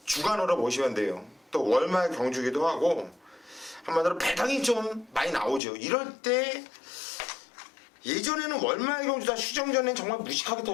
주간으로 보시면 돼요. 또 월말 경주기도 하고 한마디로 배당이 좀 많이 나오죠. 이럴 때 예전에는 월말 경주 다 휴정 전엔 정말 무식하게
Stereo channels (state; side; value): drops out; right; at 5.6 s